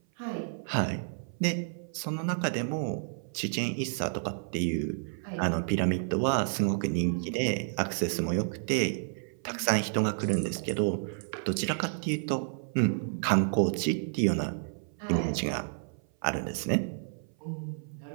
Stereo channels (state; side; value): silent; left; 55 dB below the other